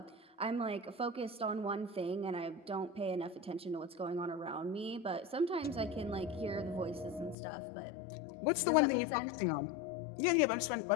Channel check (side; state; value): right; drops out; at 7.4 s